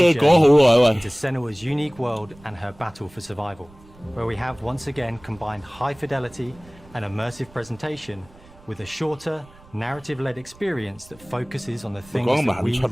journey into Senua's unique world and her battle for survival, where we have once again combined high fidelity and immersive presentation with a shorter, narrative-led experience that focuses on the things that we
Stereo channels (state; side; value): noise; right; rumble, 24 dB below the sound